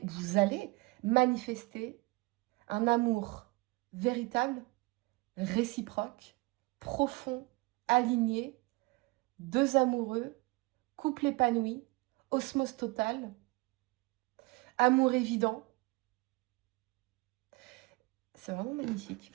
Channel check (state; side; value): quieter; left; 25.2 dB